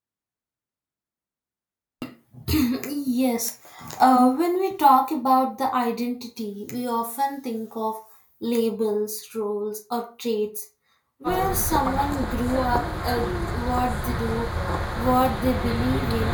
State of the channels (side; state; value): both; identical; correlation 1.00